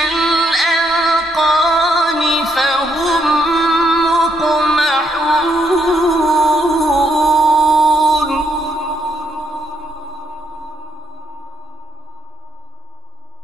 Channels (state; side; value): normal; both; correlation 0.74